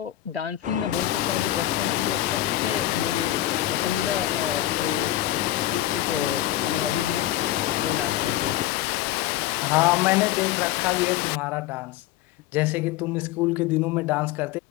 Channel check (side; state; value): right; quieter; 14.6 dB